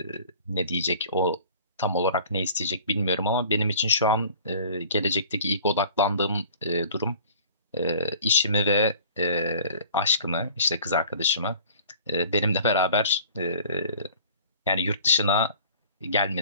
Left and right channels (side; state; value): both; inverted; correlation -0.47